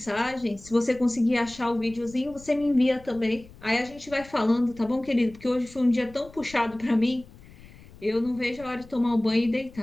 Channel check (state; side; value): noise; left; rumble, 21 dB below the sound